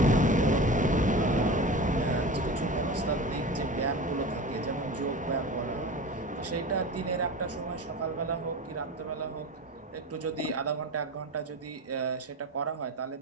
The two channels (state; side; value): normal; both; correlation 0.31